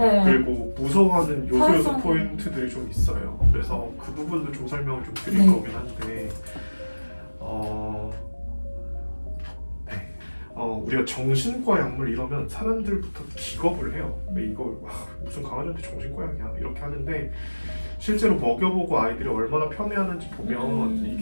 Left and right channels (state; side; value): inverted; both; correlation -1.00